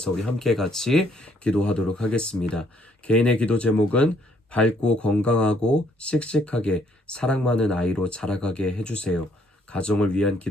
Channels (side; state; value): both; normal; correlation 0.68